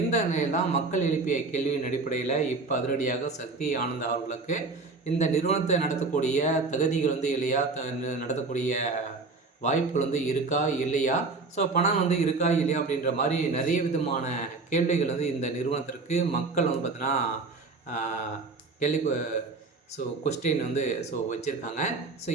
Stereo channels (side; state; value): left; quieter; 3.9 dB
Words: நிலையில் தான் மக்கள் எழுப்பிய கேள்வியின் அடிப்படையில் இப்போ அதிரடியாக சக்தி ஆனந்த் அவர்களுக்கு இந்த நிறுவனத்தை நடத்தக்கூடிய தகுதிகள் இல்லையா, நடத்தக்கூடிய வாய்ப்புகள் இருக்கா இல்லையா, பணம் இருக்கா இல்லையா அப்படின்ற மாதிரி நிறைய விதமான கேள்விகள் இந்த நிறுவனத்திற்கு மக்கள் பார்த்தீங்கன்னா கேள்வி கொஸ்டின் வச்சுருக்காங்க.